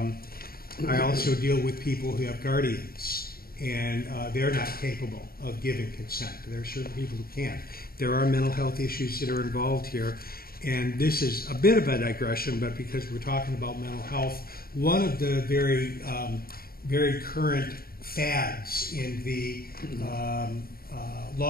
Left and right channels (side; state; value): right; late; 0.43 ms